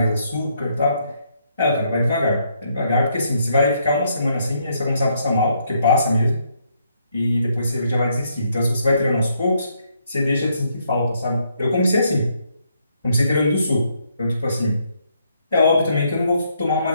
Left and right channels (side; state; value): both; inverted; correlation -0.74